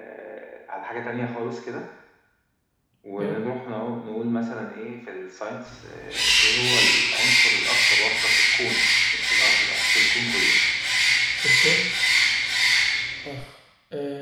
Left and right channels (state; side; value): identical; both; correlation 1.00